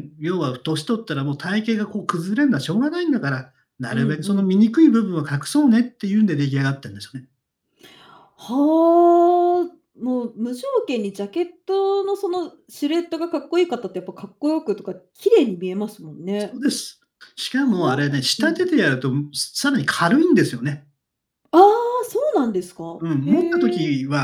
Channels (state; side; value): identical; both; correlation 1.00